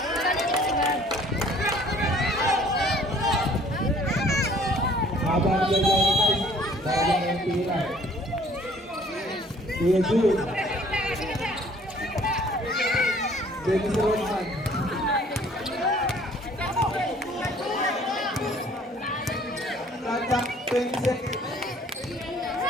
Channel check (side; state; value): both; normal; correlation 0.56